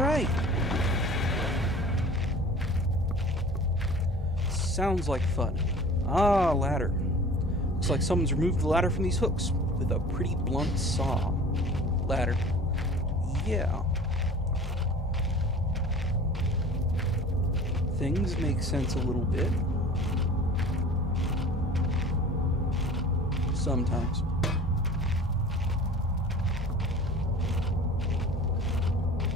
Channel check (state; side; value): normal; both; correlation 0.43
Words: Sounds like fun. Ah, ladder. Looks like someone's removed the ladder from these hooks with a pretty blunt saw. Ladder. Yeah. Things make sense a little bit. Sometimes.